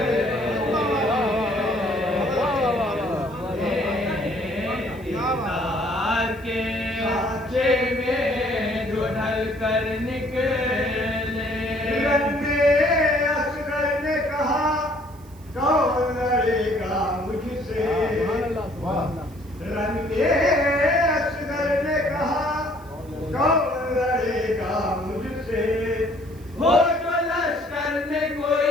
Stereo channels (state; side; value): noise; right; hiss, 27 dB below the sound